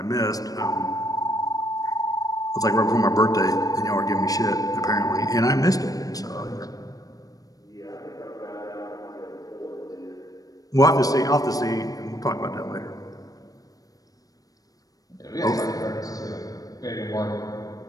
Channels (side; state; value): right; late; 0.18 ms